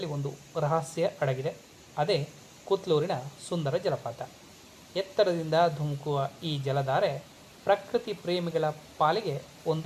ಒಂದು ರಹಸ್ಯ ಅಡಗಿದೆ. ಅದೇ ಕುತ್ಲೂರಿನ ಸುಂದರ ಜಲಪಾತ. ಎತ್ತರದಿಂದ ಧುಮುಕುವ ಈ ಜಲಧಾರೆ ಪ್ರಕೃತಿ ಪ್ರೇಮಿಗಳ ಪಾಲಿಗೆ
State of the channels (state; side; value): identical; both; correlation 1.00